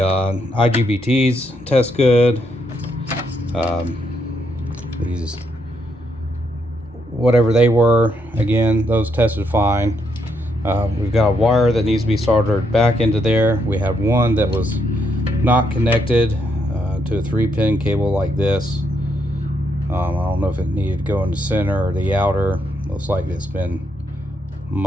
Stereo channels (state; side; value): normal; both; correlation 0.76